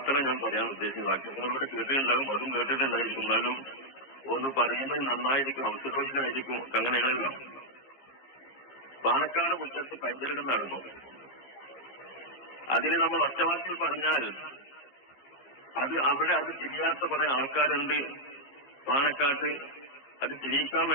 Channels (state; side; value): late; right; 15 ms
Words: ഞാൻ പറയാൻ ഉദ്ദേശിച്ച വാക്ക്. നിങ്ങളോട് കേട്ടിട്ടുണ്ടാകും, അതും കേട്ടിട്ടുണ്ടായിരിക്കും. എന്നാലും ഒന്ന് പറയുന്നത് നന്നായിരിക്കും, അവസരമായിരിക്കും. അങ്ങനെയാണല്ലോ. പാണക്കാട് മുറ്റത്ത് പൈതൃകം നടന്നു. അതിന് നമ്മൾ ഒറ്റവാക്കിൽ പറഞ്ഞാൽ അവിടെ അത് തിരിയാത്ത കുറെ ആൾക്കാരുണ്ട് പാണക്കാട്ട്. അത് തിരിയിക്കാൻ